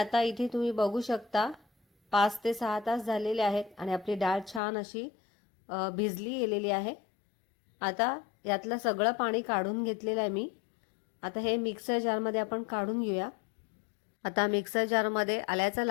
इथे तुम्ही बघू शकता 5 ते 6 तास झालेले आहेत आणि आपली डाळ छान अशी भिजली गेलेली आहे। आता यातलं सगळं पाणी काढून घेतलेलं आहे मी। आता हे मिक्सर जारमध्ये आपण काढून घेऊया। आता मिक्सर जारमध्ये आल्याचा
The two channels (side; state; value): right; drops out; at 4.6 s